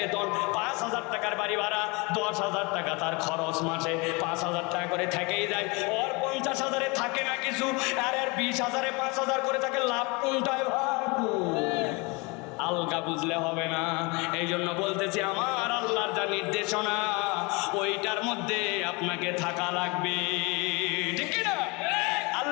5,000 টাকার বাড়ি ভাড়া, 10,000 টাকা তার খরচ, মাসে 5,000 টাকা করে থেকেই যায়। ওর 50,000-এ থাকে না কিছু, আর 20,000-এ 5,000 করে থাকে, লাভ কোনটায় ভাই? আলগা বুঝলে হবে না। এই জন্য বলতেছি আমার আল্লাহর যা নির্দেশনা ওইটার মধ্যে আপনাকে থাকা লাগবে, ঠিক না?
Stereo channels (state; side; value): quieter; right; 27.7 dB